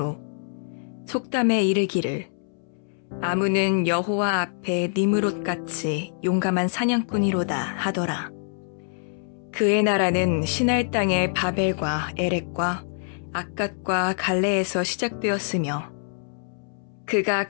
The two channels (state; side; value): silent; right; 62 dB below the other